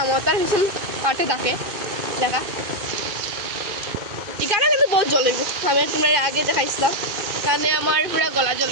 ভীষণ পাঠে থাকে দেখা, এখানে কিন্তু বহুত জ্বলিব। আমি তোমরা আগে দেখাইছিলাম, কারণে আমার পুরা গলা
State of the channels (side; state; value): left; late; 2.5 ms